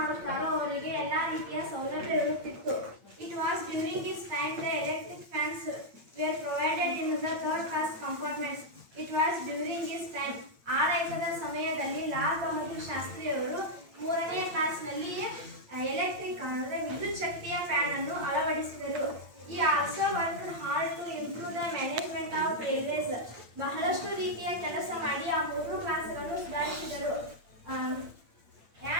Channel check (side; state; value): left; late; 8.7 ms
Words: ಅವರಿಗೆ ಎಲ್ಲ ರೀತಿಯ ಸೌಲಭ್ಯ ಇರುತ್ತಿತ್ತು. It was during this